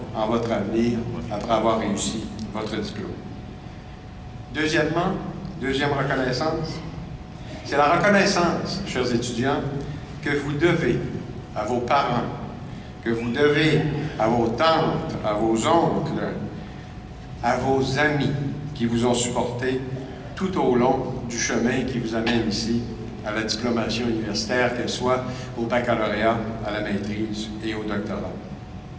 en votre avenir après avoir réussi votre diplôme. Deuxième reconnaissance, c'est la reconnaissance, chers étudiants, que vous devez à vos parents, que vous devez à vos tantes, à vos oncles, à vos amis qui vous ont supporté tout au long du chemin qui vous amène ici à la diplomation universitaire, qu'elle soit au baccalauréat, à la maîtrise et au doctorat.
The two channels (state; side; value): identical; both; correlation 1.00